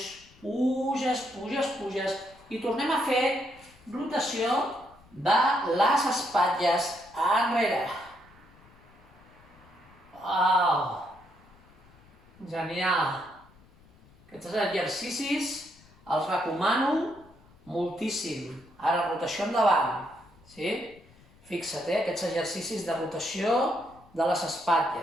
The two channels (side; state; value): left; noise; rumble, 27 dB below the sound